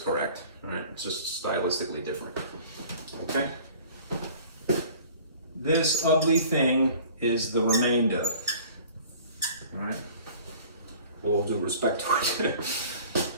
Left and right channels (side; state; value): both; inverted; correlation -0.47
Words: all right? It's just stylistically different, okay? This ugly thing is the remainder, all right? With all due respect to it.